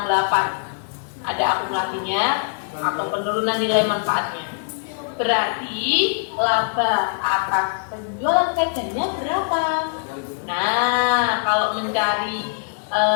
Ada akumulasinya atau penurunan nilai manfaatnya. Berarti laba atas penjualan sepedanya berapa? Nah, kalau mencari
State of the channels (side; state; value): right; silent; 64 dB below the other